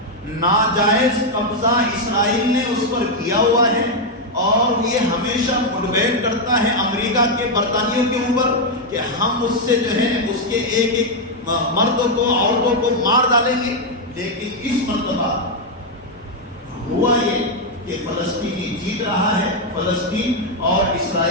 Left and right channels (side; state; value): both; normal; correlation 0.01